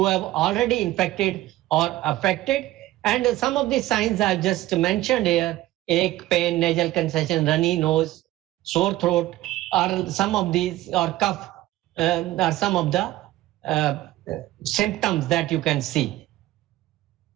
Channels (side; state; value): left; quieter; 16.1 dB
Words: have already infected or affected. And some of the signs I just mentioned here: ache, pain, nasal congestion, runny nose, sore throat, are some of these, or cough, are some of the symptoms that you can see.